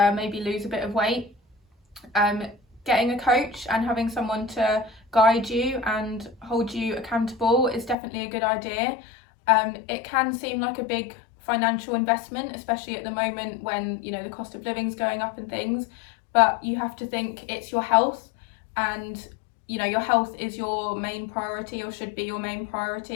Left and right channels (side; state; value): right; drops out; at 8.0 s